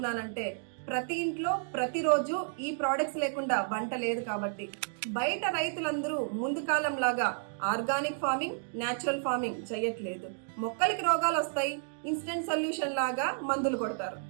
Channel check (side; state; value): left; silent; digital silence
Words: ప్రతి ఇంట్లో ప్రతిరోజు ఈ ప్రోడక్ట్స్ లేకుండా వంట లేదు కాబట్టి. బయట రైతులందరూ ముందు కాలం లాగా ఆర్గానిక్ ఫార్మింగ్, న్యాచురల్ ఫార్మింగ్ చేయట్లేదు. మొక్కలకి రోగాలు వస్తాయి, ఇన్స్టెంట్ సొల్యూషన్ లాగా మందులు కొడతారు.